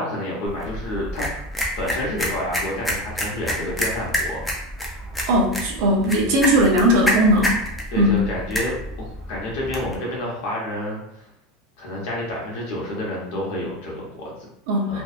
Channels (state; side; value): normal; both; correlation 0.17